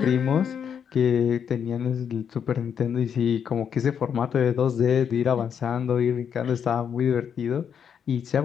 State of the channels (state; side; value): quieter; right; 7.8 dB